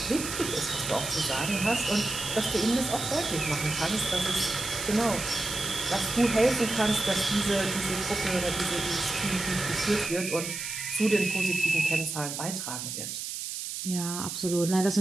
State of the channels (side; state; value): right; noise; hiss, 6 dB below the sound